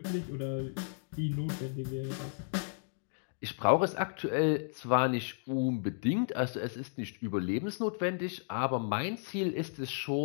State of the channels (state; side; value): silent; right; digital silence